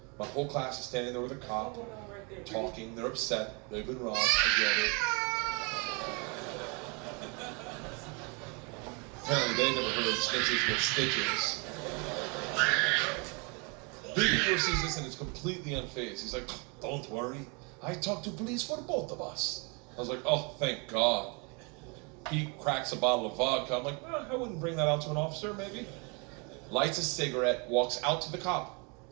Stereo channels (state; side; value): quieter; left; 32.4 dB